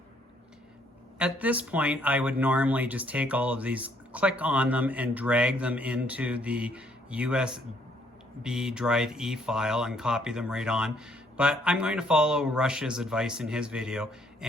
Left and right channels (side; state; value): both; normal; correlation 0.67